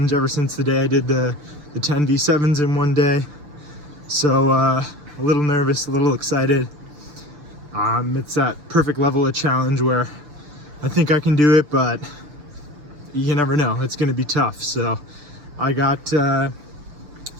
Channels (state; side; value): late; left; 6.7 ms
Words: ever since the day I did the TEN V8s in one day. So a little nervous, a little excited. It's that perfect level of challenge where I think I can do it, but you never know. It's going to be tough. So I got